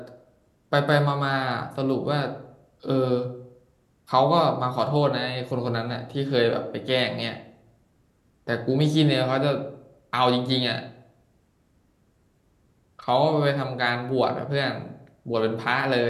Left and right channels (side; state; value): both; identical; correlation 1.00